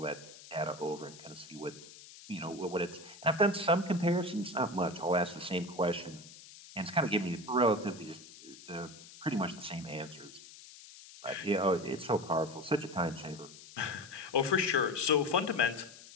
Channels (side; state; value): left; noise; hiss, 18 dB below the sound